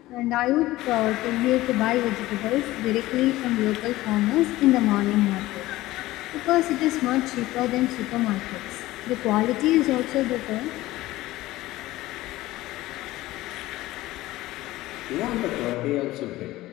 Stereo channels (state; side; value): quieter; right; 17.3 dB